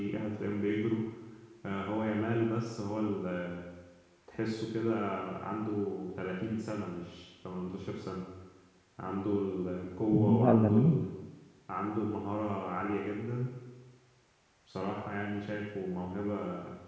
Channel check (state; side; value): identical; both; correlation 1.00